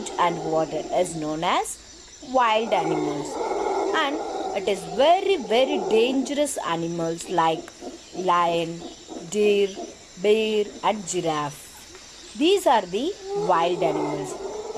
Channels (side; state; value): both; identical; correlation 1.00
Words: and water is known as wild animals. And it is very dangerous animals like lion, deer, bear and giraffe. These are the wild animals.